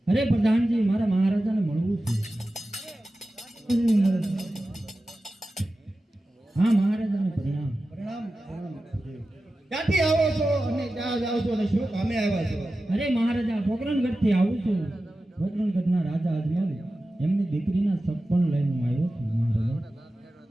અરે પ્રધાનજી, મારા મહારાજાને મળવું છે. હા મહારાજાને પ્રણામ. પ્રણામ. ક્યાંથી આવો છો અને ક્યાં જાઓ છો અને શું કામે આવ્યા છો? અરે મહારાજા, પોકરણગઢથી આવું છું. પોકરણગઢના રાજા અજમલ એમની દીકરીના સપન લઈને આવ્યો છું મહારાજા.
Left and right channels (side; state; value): both; normal; correlation 0.94